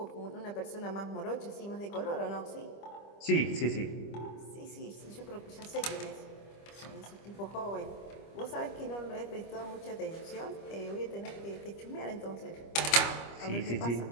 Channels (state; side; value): late; right; 25 ms